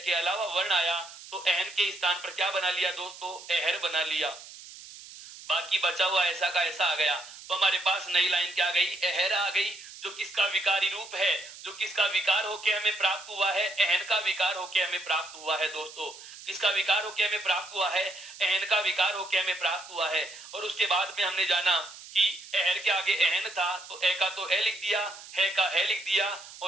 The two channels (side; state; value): right; noise; hiss, 16 dB below the sound